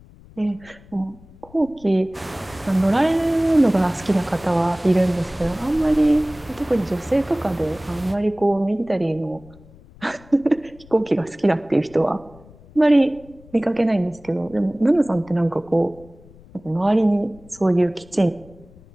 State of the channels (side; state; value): left; noise; rumble, 24 dB below the sound